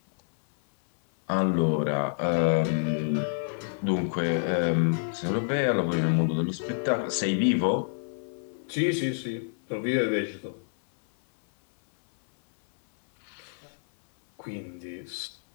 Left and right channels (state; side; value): silent; right; 57 dB below the other